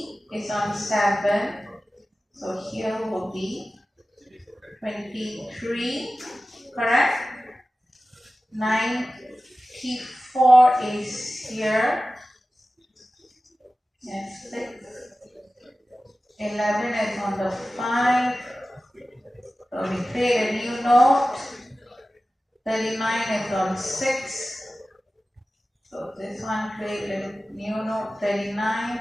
is on 7. So here will be 23. Correct? 94 is here. Yes, 6. 11 is on the 5. So we create a new node. 39 is on 6. So this one create a new node. 39.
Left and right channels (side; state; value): both; normal; correlation 0.96